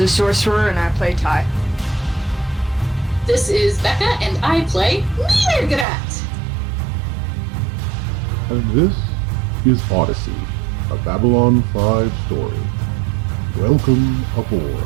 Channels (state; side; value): drops out; left; at 5.9 s